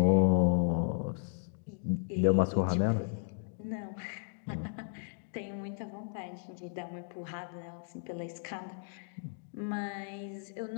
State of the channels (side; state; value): right; silent; digital silence